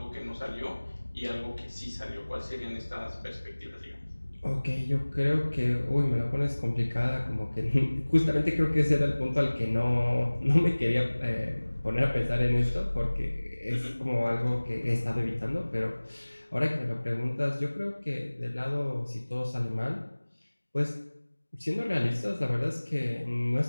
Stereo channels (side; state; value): both; inverted; correlation -1.00